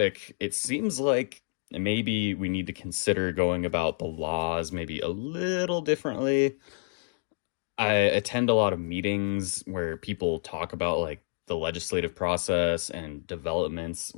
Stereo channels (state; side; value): silent; right; digital silence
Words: it seems like maybe we need to consider going about the laws maybe a little differently. I attend a lot of meetings where people talk about like the legislative process and developments